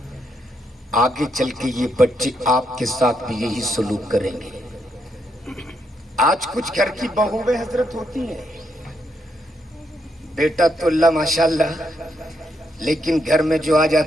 آگے چل کے یہ بچے آپ کے ساتھ بھی یہی سلوک کریں گے۔ آج کچھ گھر کی بہویں حضرت ہوتی ہیں، بیٹا تو اللہ ماشاءاللہ، لیکن گھر میں جو آ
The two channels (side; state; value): both; normal; correlation 0.78